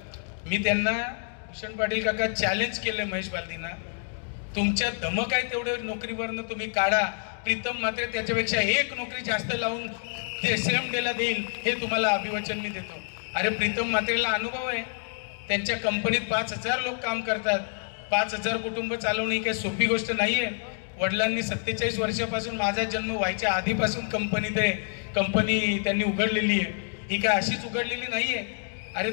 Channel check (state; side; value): silent; right; digital silence